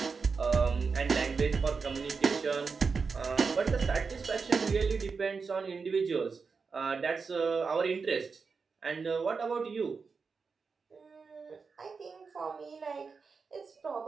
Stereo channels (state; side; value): quieter; left; 5.0 dB